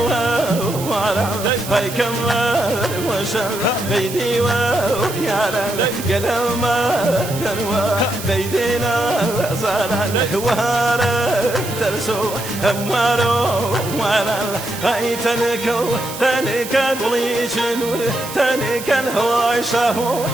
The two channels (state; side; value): noise; right; hiss, 11 dB below the sound